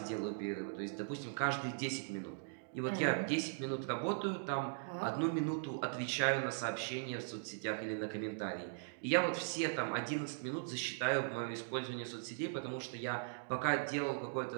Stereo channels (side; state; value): left; silent; digital silence